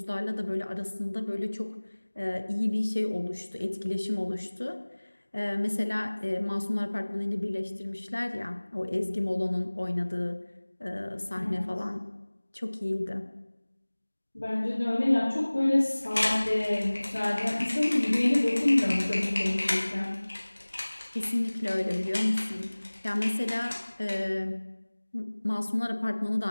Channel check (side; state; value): both; inverted; correlation -1.00